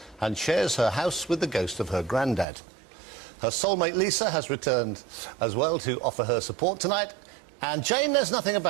and shares her house with the ghost of her granddad. Her soulmate Lisa has returned as well to offer her support tonight. And Jane knows nothing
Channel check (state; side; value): drops out; left; at 2.5 s